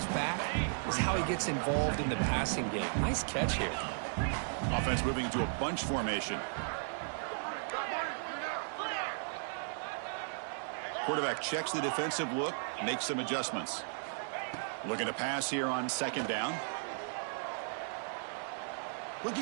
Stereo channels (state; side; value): silent; left; digital silence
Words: back is how he gets involved in the passing game. Nice catch here. Offense moving into a bunch formation. Quarterback checks the defensive look, makes some adjustments. Looking to pass here on 2nd down.